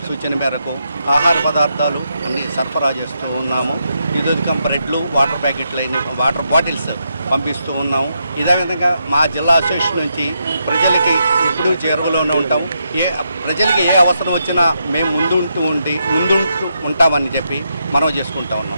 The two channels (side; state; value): both; inverted; correlation -0.81